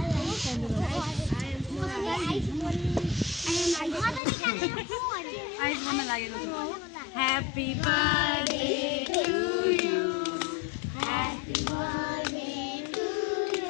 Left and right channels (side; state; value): right; drops out; at 4.2 s